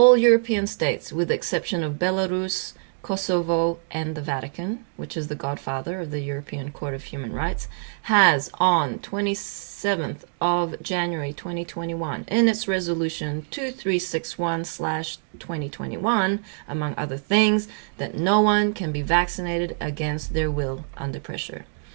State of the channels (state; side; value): silent; left; digital silence